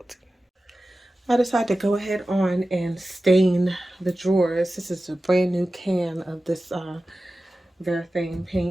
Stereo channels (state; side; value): normal; both; correlation 0.95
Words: I decided to go ahead on and stain the drawers. This is a brand new can of this Refinishing